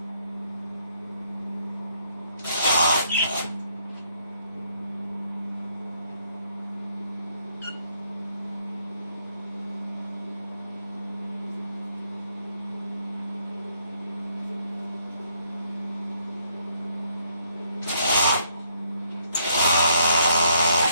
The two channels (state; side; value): inverted; both; correlation -0.70